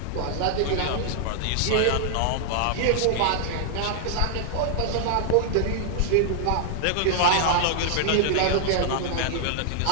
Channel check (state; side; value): different; both; correlation 0.00